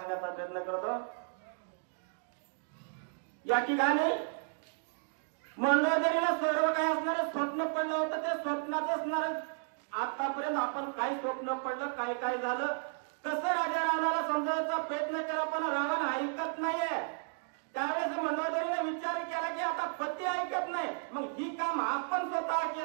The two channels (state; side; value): silent; left; 55 dB below the other